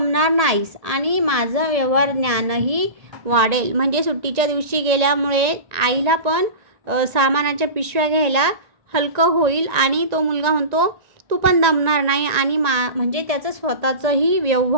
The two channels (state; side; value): late; left; 1.9 ms